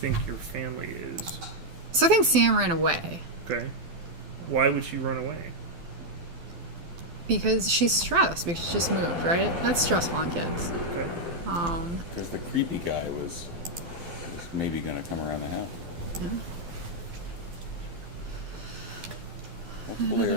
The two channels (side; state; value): left; late; 12 ms